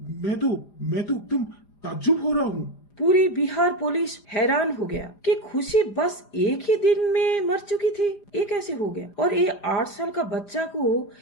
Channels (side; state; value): right; late; 4.9 ms